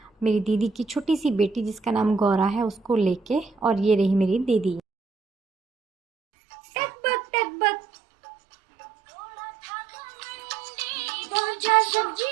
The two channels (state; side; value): drops out; left; at 4.8 s